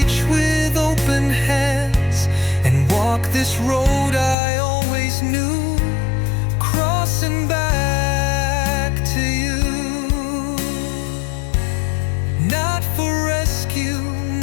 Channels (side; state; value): right; drops out; at 4.4 s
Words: with open hands and walk this road I always knew, crossing back to you. Not for rescue,